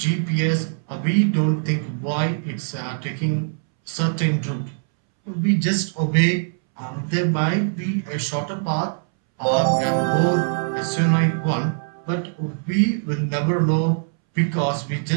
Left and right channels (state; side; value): silent; left; 64 dB below the other